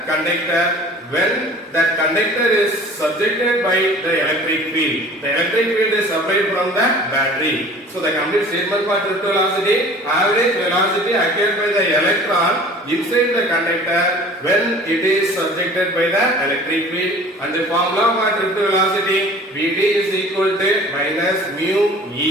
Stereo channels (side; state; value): both; normal; correlation 0.46